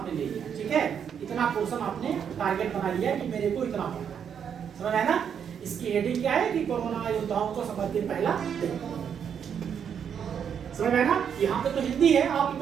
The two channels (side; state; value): left; quieter; 7.9 dB